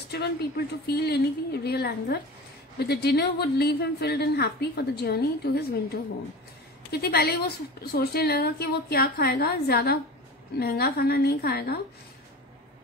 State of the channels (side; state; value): both; normal; correlation 0.33